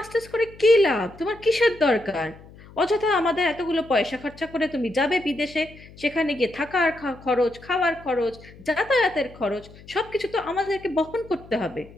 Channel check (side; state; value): left; noise; hum, 21 dB below the sound